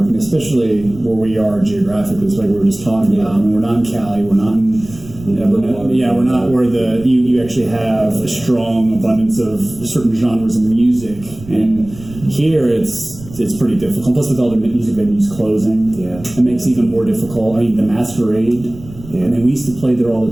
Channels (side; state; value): right; noise; rumble, 17 dB below the sound